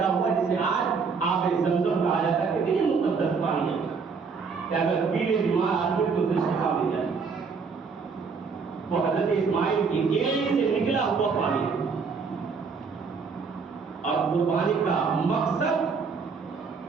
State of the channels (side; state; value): left; quieter; 5.2 dB